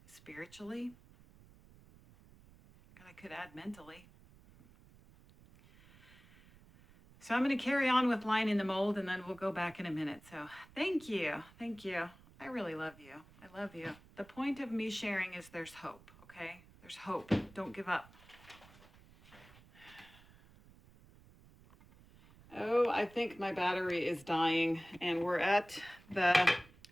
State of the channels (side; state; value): right; noise; rumble, 24 dB below the sound